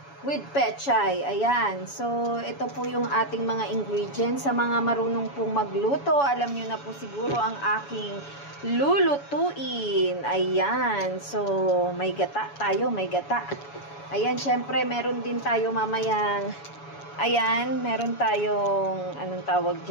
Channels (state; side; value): late; right; 7.1 ms